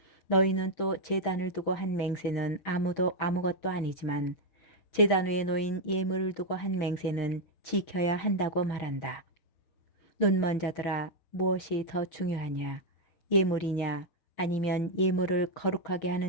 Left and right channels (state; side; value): late; right; 6.5 ms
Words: 너희는 또 제단을 두고 한 맹세는 아무것도 아니지만 제단 위에 놓인 예물을 두고 한 맹세는 지켜야 한다고 말한다. 눈먼 자들아, 무엇이 더 중요하냐? 예물이냐 아니면 예물을 거룩하게